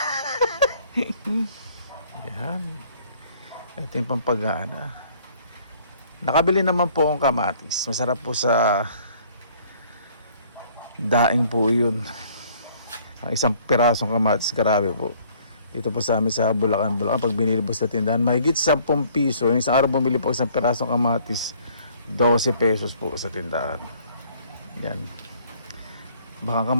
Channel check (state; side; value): inverted; both; correlation -0.59